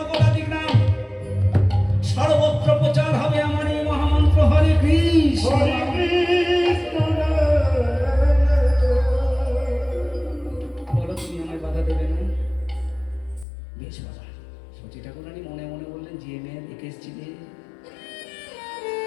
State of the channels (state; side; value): drops out; right; at 13.5 s